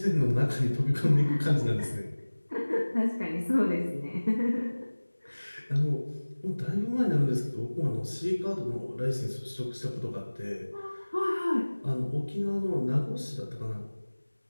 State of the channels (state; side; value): inverted; both; correlation -1.00